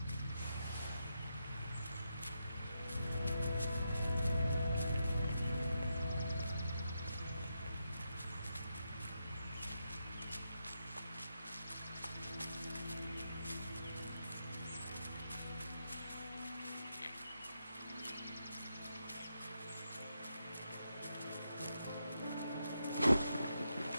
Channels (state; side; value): inverted; both; correlation -0.85